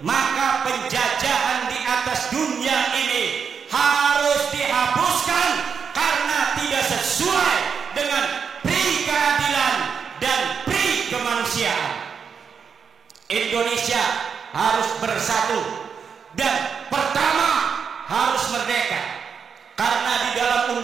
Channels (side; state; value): left; quieter; 6.5 dB